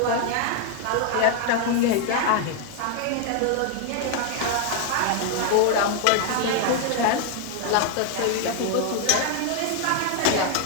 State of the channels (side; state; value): both; different; correlation 0.00